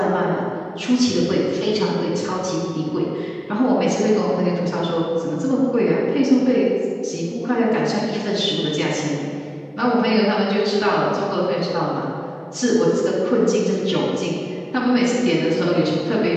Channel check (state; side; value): identical; both; correlation 1.00